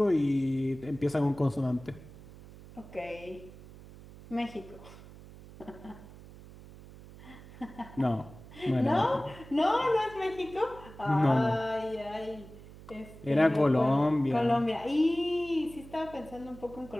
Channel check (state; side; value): noise; right; hum, 18 dB below the sound